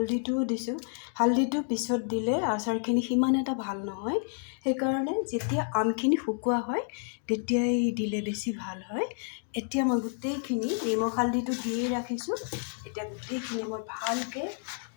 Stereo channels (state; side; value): silent; right; 58 dB below the other